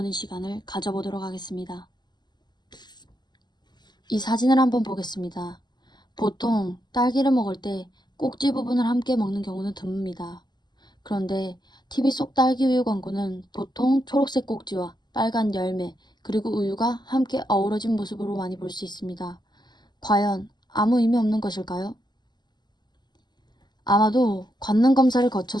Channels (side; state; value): right; late; 0.21 ms